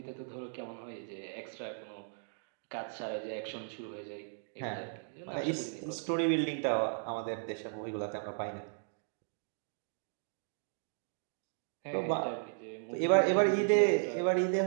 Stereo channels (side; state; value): left; silent; digital silence